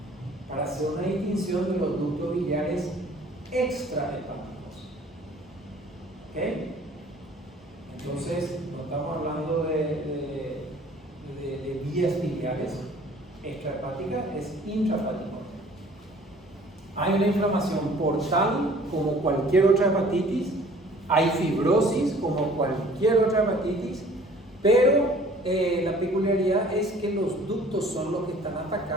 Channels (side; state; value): both; normal; correlation 0.52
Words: Para hacer una distinción de los ductos biliares extrahepáticos. ¿Ok? Entonces, no estamos hablando de vías biliares extrahepáticas, es intrahepático. Hay una inflamación portal como cualquier otra hepatitis, hay fibrosis como cualquier otra hepatitis, pero la peculiaridad es que los ductos son los que están